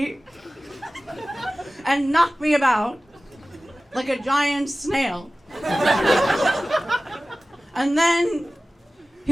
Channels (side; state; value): both; normal; correlation 0.97